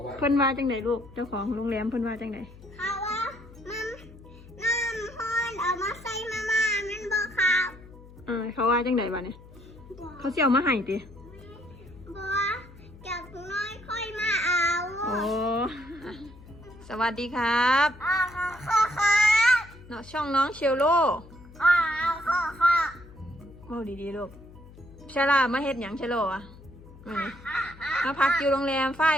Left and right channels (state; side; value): noise; left; hum, 20 dB below the sound